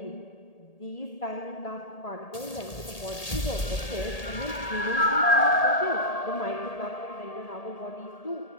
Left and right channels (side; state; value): right; late; 1.8 ms